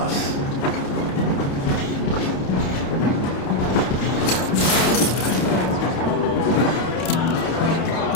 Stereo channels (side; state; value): right; late; 29 ms